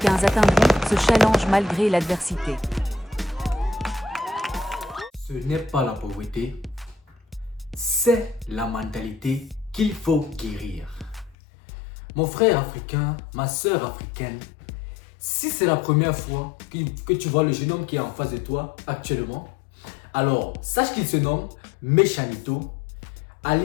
atteindront ce challenge malgré l'adversité. Ce n'est pas la pauvreté, c'est la mentalité qu'il faut guérir. Mon frère africain, ma soeur africaine, si c'est la première fois que tu vois le jeune homme qui est en face de toi actuellement, alors sache qu'il se nomme Méchanito,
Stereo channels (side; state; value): right; drops out; at 11.4 s